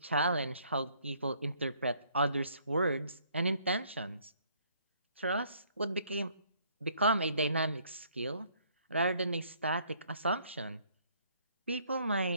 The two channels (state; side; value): inverted; both; correlation -0.63